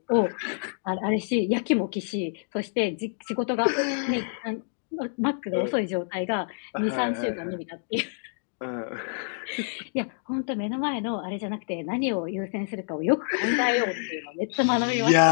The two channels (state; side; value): silent; right; digital silence